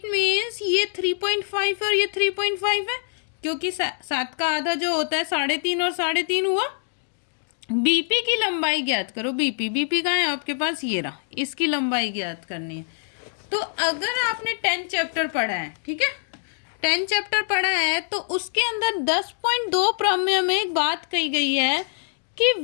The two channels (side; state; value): right; silent; 62 dB below the other